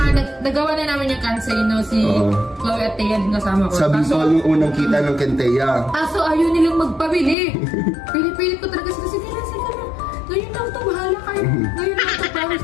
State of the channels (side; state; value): right; drops out; at 7.4 s